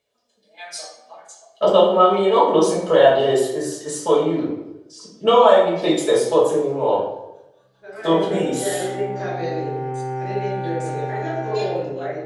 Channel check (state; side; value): identical; both; correlation 1.00